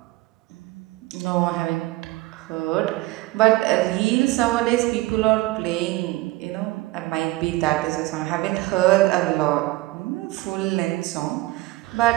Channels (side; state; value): left; quieter; 19.6 dB